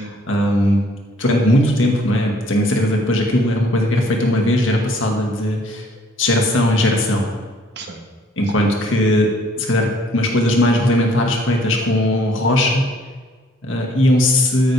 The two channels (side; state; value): both; normal; correlation 0.60